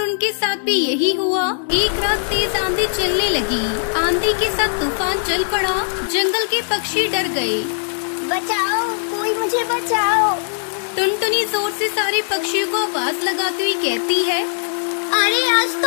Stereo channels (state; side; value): silent; right; digital silence